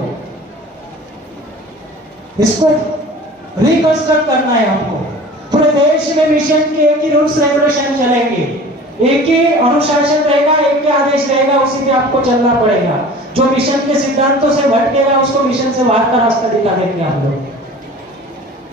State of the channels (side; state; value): both; normal; correlation 0.42